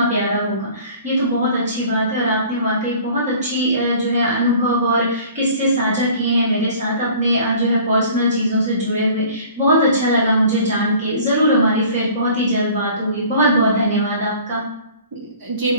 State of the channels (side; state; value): both; inverted; correlation -0.48